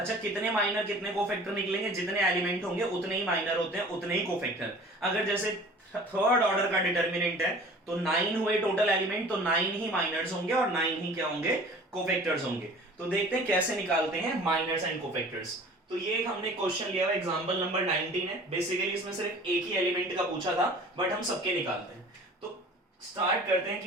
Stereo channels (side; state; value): both; normal; correlation 0.45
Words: कितने माइनर कितने कोफैक्टर निकलेंगे? जितने एलिमेंट होंगे उतने ही माइनर होते हैं, उतने ही कोफैक्टर। अगर जैसे थर्ड ऑर्डर का डिटरमिनेंट है तो 9 हुए टोटल एलिमेंट, तो 9 ही माइनर्स होंगे और 9 ही क्या होंगे? कोफैक्टर्स होंगे। तो देखते हैं कैसे निकालते हैं माइनर्स एंड कोफैक्टर्स। तो ये हमने क्वेश्चन लिया हुआ एग्जांपल नंबर 19 है। बेसिकली इसमें सिर्फ एक ही एलिमेंट का पूछा था, बट हम सबके निकालते हैं। तो स्टार्ट करते हैं